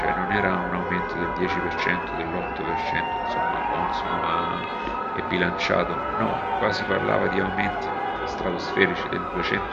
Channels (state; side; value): identical; both; correlation 1.00